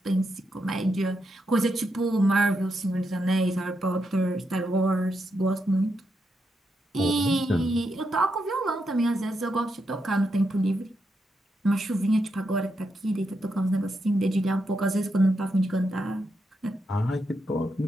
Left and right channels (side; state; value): both; normal; correlation 0.83